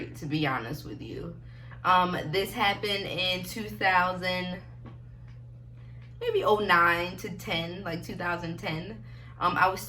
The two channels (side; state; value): both; identical; correlation 1.00